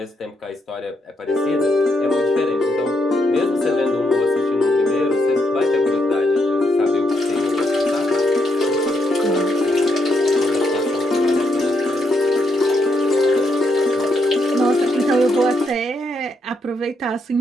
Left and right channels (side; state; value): both; normal; correlation 0.77